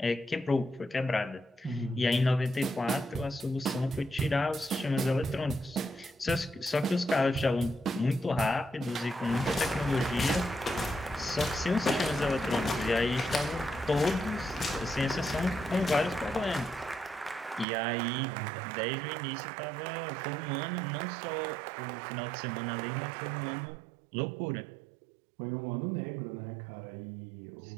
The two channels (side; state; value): left; drops out; at 17.7 s